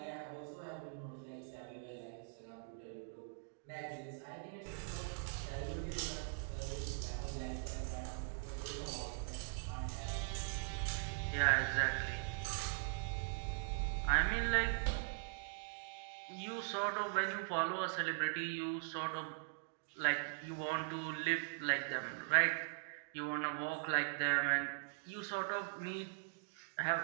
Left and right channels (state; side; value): silent; left; digital silence